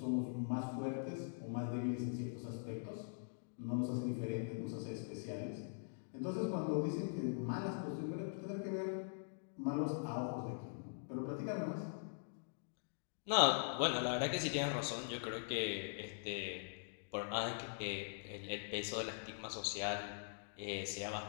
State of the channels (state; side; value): silent; right; digital silence